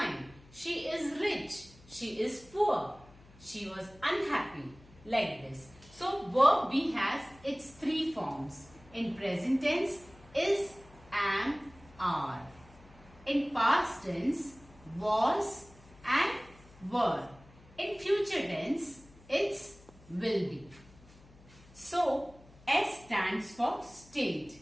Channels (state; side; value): noise; left; hum, 24 dB below the sound